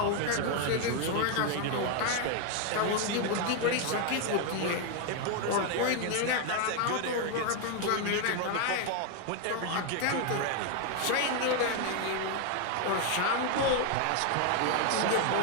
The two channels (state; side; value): different; both; correlation 0.01